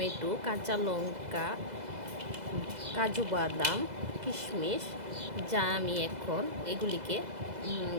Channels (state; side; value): late; left; 2.0 ms